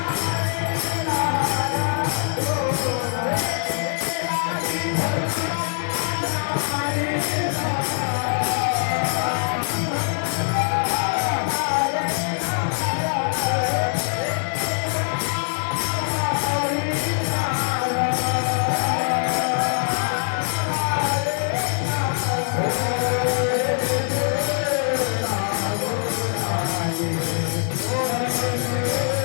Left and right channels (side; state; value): right; silent; 63 dB below the other